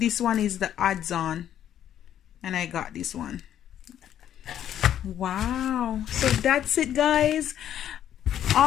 one is the odds on, and I got this one. Wow. So that's it, guys.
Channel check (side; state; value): right; quieter; 10.6 dB